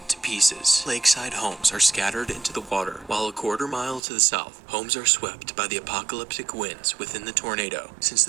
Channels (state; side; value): drops out; left; at 4.0 s